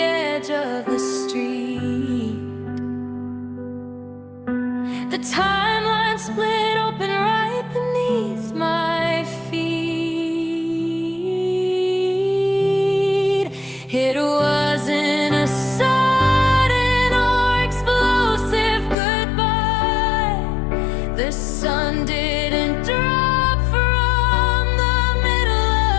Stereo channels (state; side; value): drops out; right; at 18.9 s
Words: of the street. The timeline split open right beneath my feet. It wasn't a sudden or explosive goodbye. The sun didn't drop from the middle